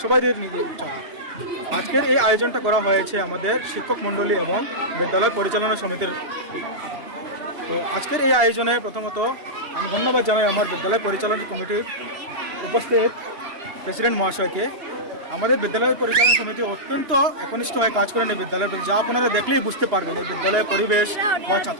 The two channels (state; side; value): late; left; 2.9 ms